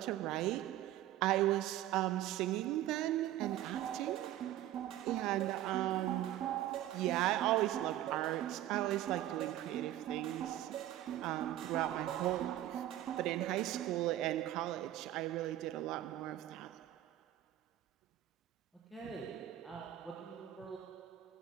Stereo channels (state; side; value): quieter; left; 13.5 dB